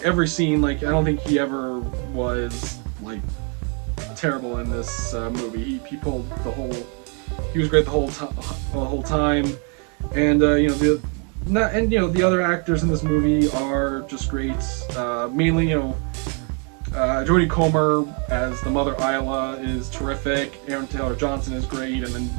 every scene. Like I don't think he ever was like terrible in this movie. He pulled the whole. He was great the whole time, and the other actors in this movie are just great. Mainly Jodie Comer as the mother Isla is terrific. Aaron Taylor Johnson is great, and then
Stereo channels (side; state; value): left; quieter; 38.3 dB